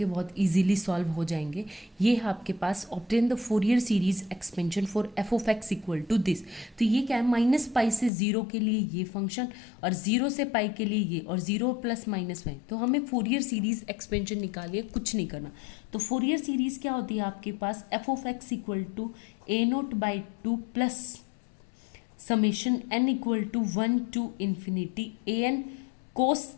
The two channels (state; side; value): drops out; right; at 8.1 s